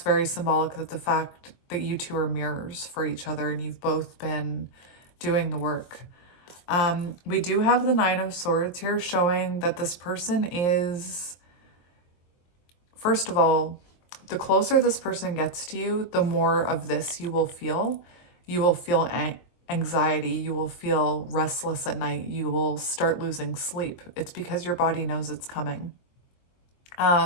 very symbolic, that the fact that you two are mirrors for each other and you've both been doing the work. We do have the Nine of Swords here, showing that this person is, first of all, the closer this person gets to you, the more of this you will feel. You will feel anxiety. You will feel restless at night. You will start losing sleep. It's because your body knows it's coming.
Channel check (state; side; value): late; right; 23 ms